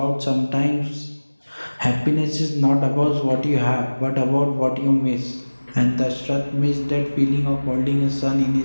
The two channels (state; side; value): inverted; both; correlation -1.00